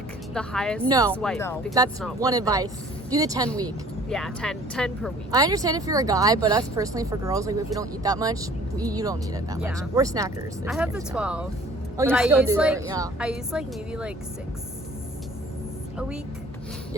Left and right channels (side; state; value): both; normal; correlation 0.52